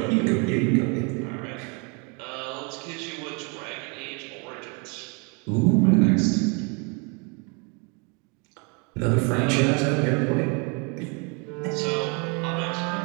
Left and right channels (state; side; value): quieter; left; 33.5 dB